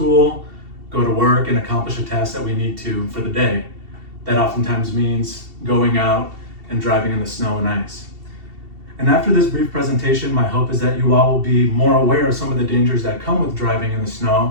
go to work, and accomplish a task that we need to for the day. That oftentimes means going out and driving in the snow and ice. And after this brief presentation, my hope is that you all will be more aware of some of the dangers that come with driving in the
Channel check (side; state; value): left; late; 2.7 ms